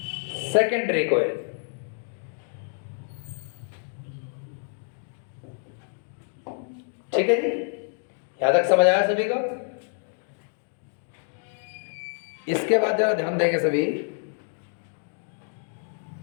secondary coil. ठीक है जी, यहां तक समझ आया सभी को? इसके बाद जरा ध्यान देंगे सभी,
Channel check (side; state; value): right; silent; 60 dB below the other